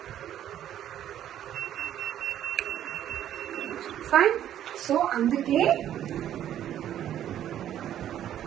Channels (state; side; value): quieter; left; 11.1 dB